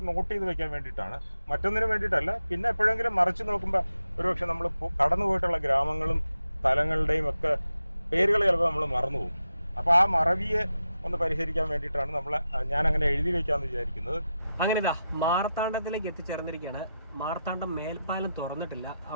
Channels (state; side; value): inverted; both; correlation -0.88